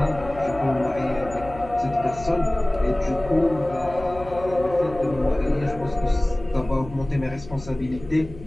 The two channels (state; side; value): noise; left; hum, 16 dB below the sound